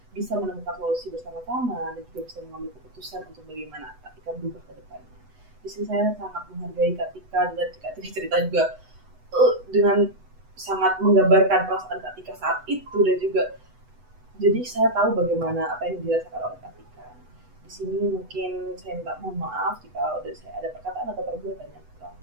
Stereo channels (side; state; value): left; late; 8.0 ms